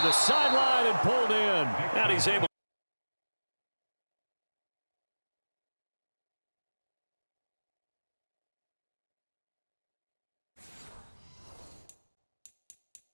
the sideline and pulled in. And he's able.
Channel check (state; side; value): inverted; both; correlation -1.00